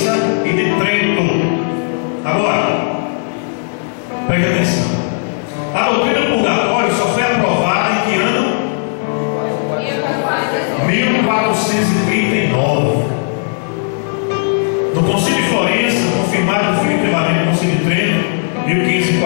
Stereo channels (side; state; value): right; silent; 69 dB below the other